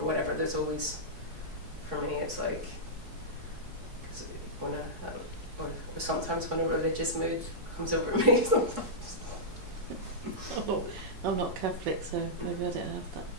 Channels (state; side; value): late; left; 4.7 ms